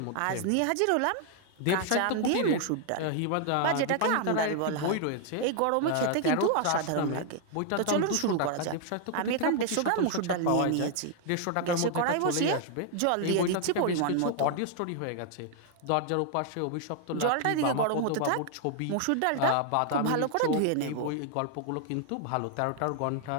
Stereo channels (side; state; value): both; different; correlation 0.00